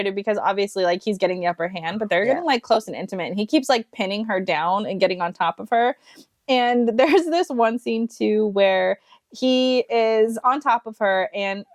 because obviously, like, he's getting the upper hand, but they're getting like close and intimate, and he keeps like pinning her down and getting on top of her. And there's this one scene too where he is on top of her, and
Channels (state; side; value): identical; both; correlation 1.00